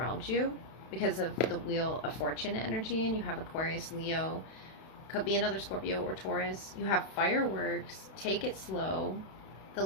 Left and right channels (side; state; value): right; late; 32 ms